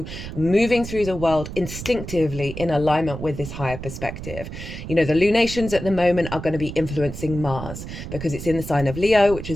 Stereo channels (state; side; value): noise; right; rumble, 9 dB below the sound